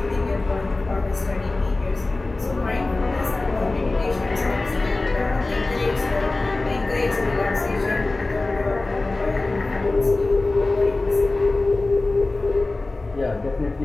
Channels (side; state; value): right; quieter; 3.1 dB